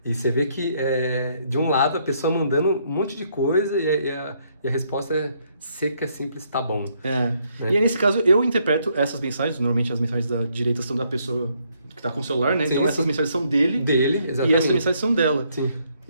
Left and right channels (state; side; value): inverted; both; correlation -0.71